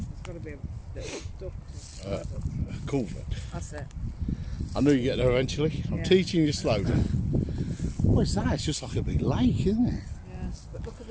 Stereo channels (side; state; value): both; identical; correlation 1.00